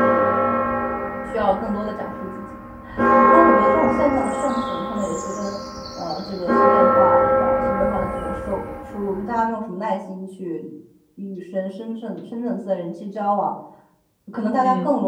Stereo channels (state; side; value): identical; both; correlation 1.00